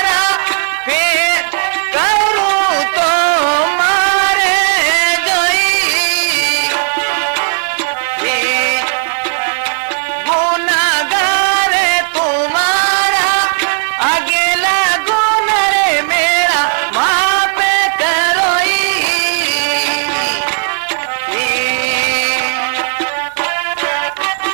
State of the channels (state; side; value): silent; left; 65 dB below the other